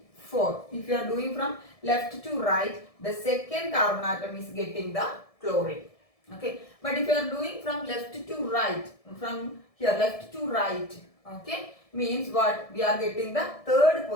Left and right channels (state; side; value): late; right; 1.7 ms